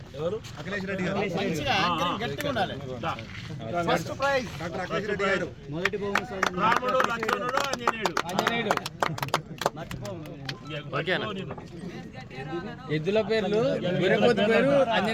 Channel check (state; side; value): identical; both; correlation 1.00